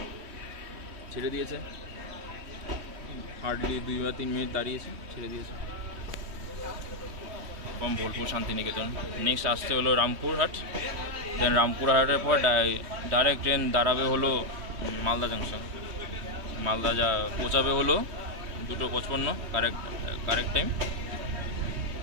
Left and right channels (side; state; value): left; late; 3.1 ms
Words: ছেড়ে দিয়েছে, হার্ডলি 2 বা 3 মিনিট দাঁড়িয়েছে, ছেড়ে দিয়েছে। এবং বোলপুর শান্তিনিকেতন। নেক্সট আসতে হলো রামপুরহাট, দেন রামপুরহাটের পর ডাইরেক্ট ট্রেন দাঁড়াবে হলো মালদা জাংশন। মালদা যা পৌঁছাবে হলো 2:55, correct time.